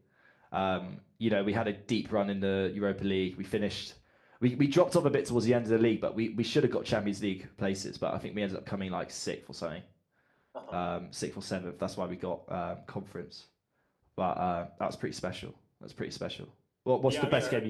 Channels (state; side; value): identical; both; correlation 1.00